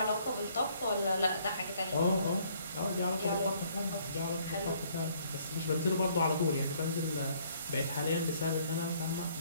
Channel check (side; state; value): both; inverted; correlation -0.63